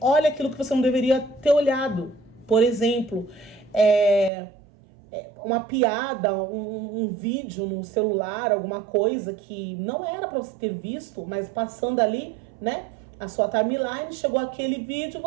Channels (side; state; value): left; drops out; at 4.3 s